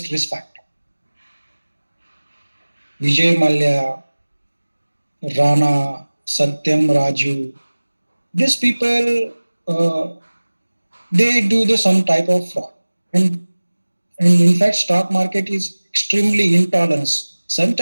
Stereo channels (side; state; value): both; inverted; correlation -1.00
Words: risk factor. Vijay Mallya, Rana, Satyam Raju, these people, they do some type of fraud. And in fact, stock market is extremely intolerance.